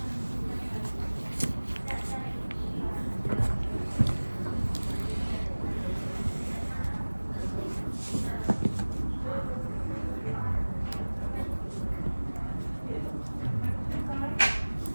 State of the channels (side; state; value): both; inverted; correlation -1.00